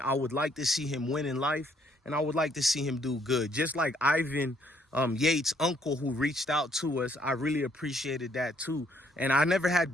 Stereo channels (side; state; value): both; normal; correlation 0.67